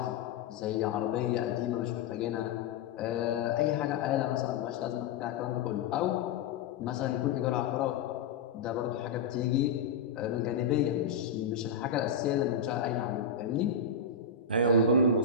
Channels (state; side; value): quieter; right; 5.2 dB